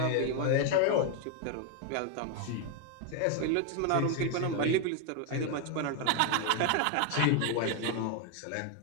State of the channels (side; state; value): both; different; correlation 0.01